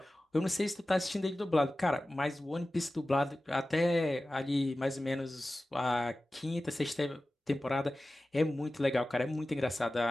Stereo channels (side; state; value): both; normal; correlation 0.96